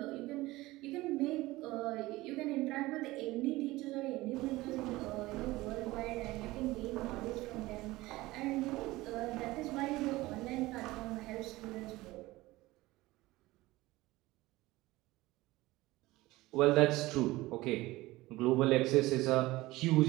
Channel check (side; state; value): left; quieter; 19.1 dB